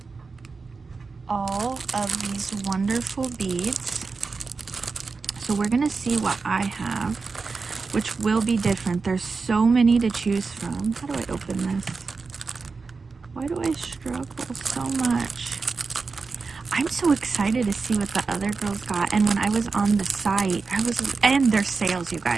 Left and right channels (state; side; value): quieter; left; 4.5 dB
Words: All of these wonderful beads. So we're going to see what I have, which will be different. There's so many to choose from. How do I open this? Why do I struggle so much? I'm so excited to see what the other girls got. And when I was on the site, and there's sales, you